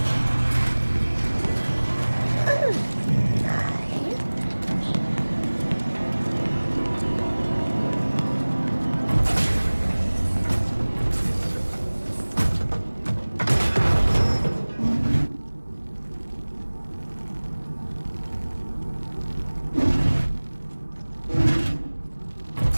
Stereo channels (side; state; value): both; inverted; correlation -1.00